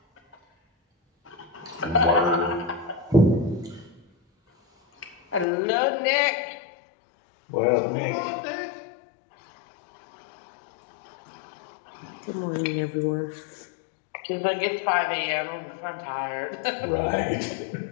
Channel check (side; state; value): right; drops out; at 5.5 s